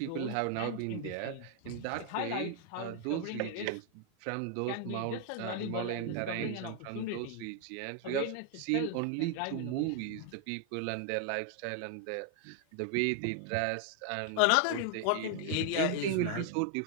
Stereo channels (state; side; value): different; both; correlation 0.00